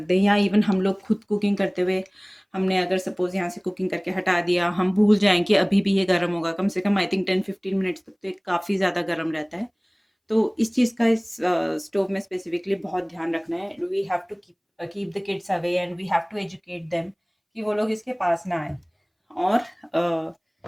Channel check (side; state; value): both; identical; correlation 1.00